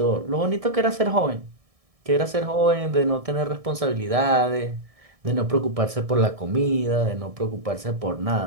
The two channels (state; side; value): late; left; 1.6 ms